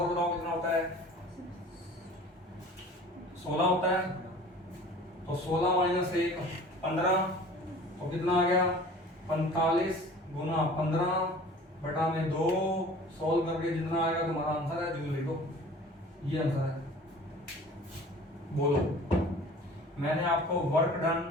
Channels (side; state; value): both; normal; correlation 0.44